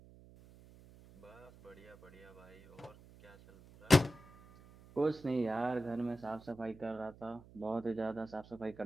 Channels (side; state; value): right; noise; hum, 22 dB below the sound